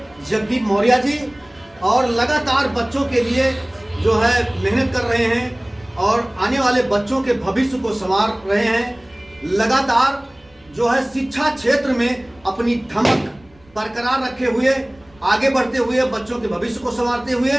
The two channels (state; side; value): noise; right; rumble, 30 dB below the sound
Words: जगदीप मौर्य जी, और लगातार बच्चों के लिए जो है मेहनत कर रहे हैं और आने वाले बच्चों के भविष्य को संवार रहे हैं। लगातार जो है शिक्षा क्षेत्र में अपनी धमक बरकरार रखे हुए, आगे बढ़ते हुए, बच्चों के भविष्य को संवारते हुए